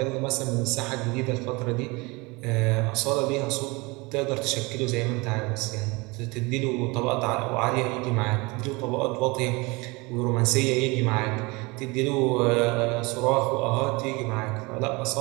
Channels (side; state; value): left; quieter; 25.5 dB